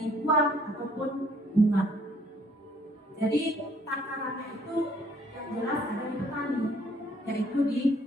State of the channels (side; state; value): both; normal; correlation 0.62